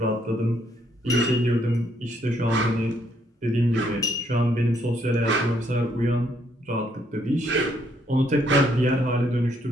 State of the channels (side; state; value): both; normal; correlation 0.70